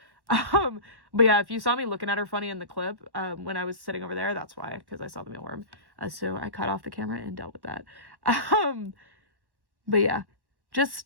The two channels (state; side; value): late; left; 1.1 ms